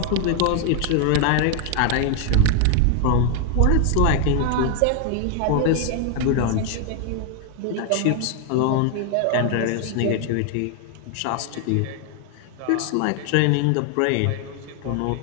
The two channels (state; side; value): different; both; correlation 0.01